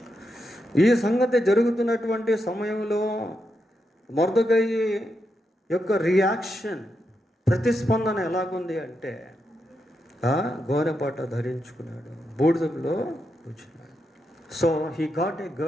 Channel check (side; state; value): both; normal; correlation 0.84